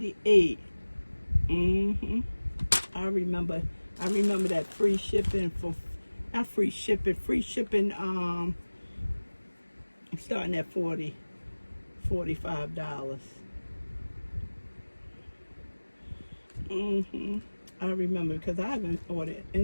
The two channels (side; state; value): both; inverted; correlation -1.00